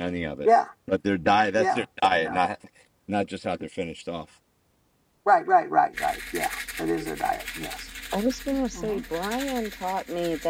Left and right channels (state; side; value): identical; both; correlation 1.00